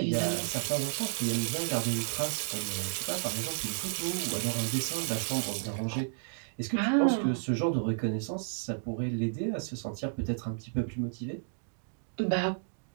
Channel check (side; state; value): left; silent; digital silence